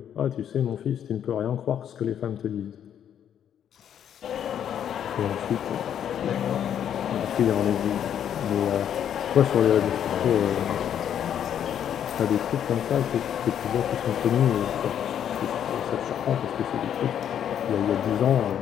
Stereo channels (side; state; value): right; quieter; 9.4 dB